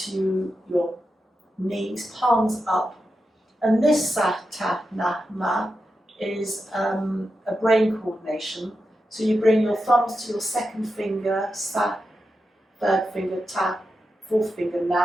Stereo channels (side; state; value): both; normal; correlation 0.89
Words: your knees, palms up. And this Satanama is a brain coordination. So you bring your thumbs to your second finger, sa, third finger, ta, fourth finger,